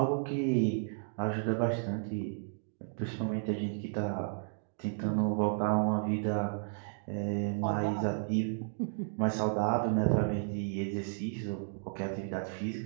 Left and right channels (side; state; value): left; silent; digital silence